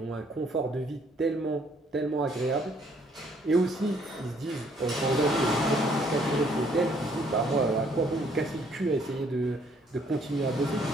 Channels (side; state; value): both; normal; correlation 0.65